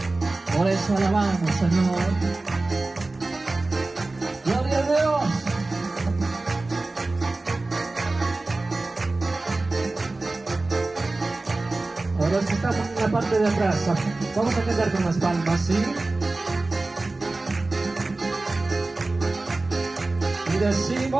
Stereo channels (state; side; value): quieter; left; 3.2 dB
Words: Por eso alabamos, Señor. Gloria a Dios. Ahora que estamos en la parte de atrás, vamos a cantar con las palmas, ¿sí? Y